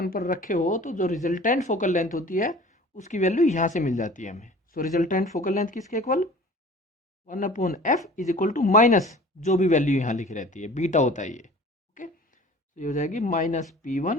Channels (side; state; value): both; normal; correlation 0.44